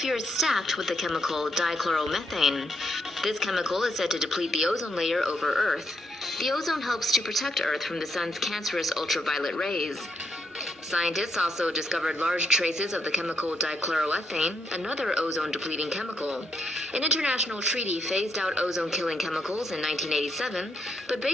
is stacked with the chemical dichloromethane. This chemical is said to deplete the ozone layer over Earth. The ozone helps to protect Earth from the sun's cancerous ultraviolet rays. Scientists also discovered large traces of the chemical dichloroethane, another ozone-depleting chemical. An international treaty phased out ozone-killing chemicals in 1987, but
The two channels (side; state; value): both; normal; correlation 0.77